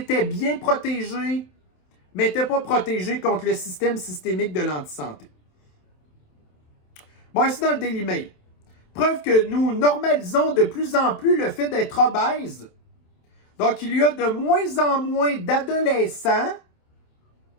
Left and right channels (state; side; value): late; right; 27 ms